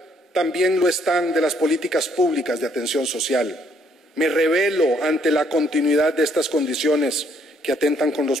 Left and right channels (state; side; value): normal; both; correlation 0.68